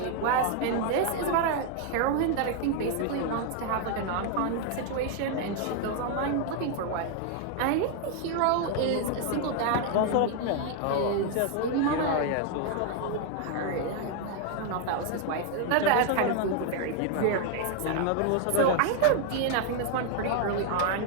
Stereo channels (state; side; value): different; both; correlation 0.00